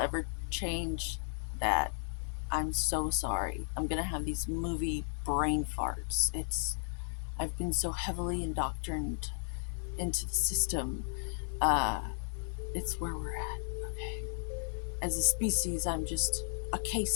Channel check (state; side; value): silent; right; digital silence